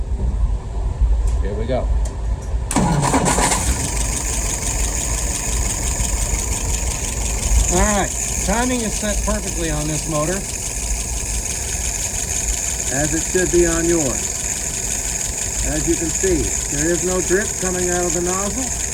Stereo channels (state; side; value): identical; both; correlation 1.00